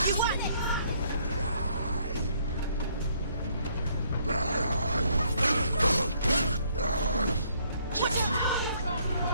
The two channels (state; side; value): inverted; both; correlation -0.67